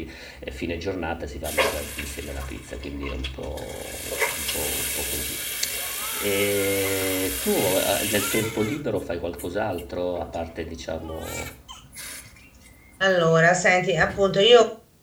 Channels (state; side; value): identical; both; correlation 1.00